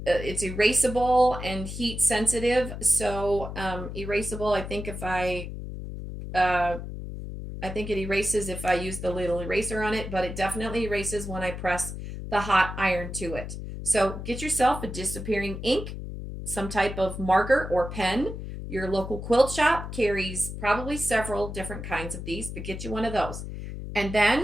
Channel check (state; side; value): noise; left; hum, 8 dB below the sound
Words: It's erasable and heat sensitive. So erasable, I think it erases if I use the little eraser on it, but it definitely erases when I press the hot iron to it. So get yourself a disappearing ink, some type of marker or pen. Your local quilt shop carries probably several different kinds of these, but get you one of those. And then